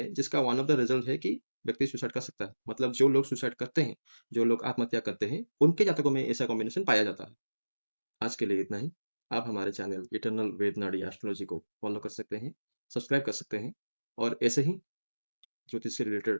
जिसका वन ऑफ द रिज़ल्ट है कि व्यक्ति सुसाइड कर सकता है। मतलब जो लोग सुसाइड करते हैं, जो लोग आत्महत्या करते हैं, उनके जातकों में ऐसा कॉम्बिनेशन पाया जाता है। आज के लिए इतना ही। आप हमारे चैनल इटर्नल वेद नाडी एस्ट्रोलॉजी को फ़ॉलो कर सकते हैं, सब्सक्राइब कर सकते हैं और ऐसे ही ज्योतिष से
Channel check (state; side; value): inverted; both; correlation -1.00